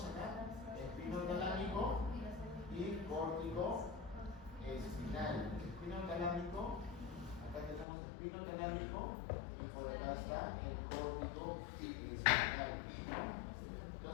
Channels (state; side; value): drops out; right; at 7.9 s